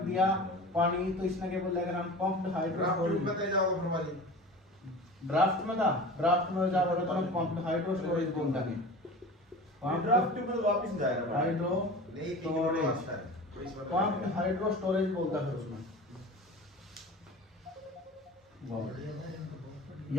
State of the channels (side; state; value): both; normal; correlation 0.36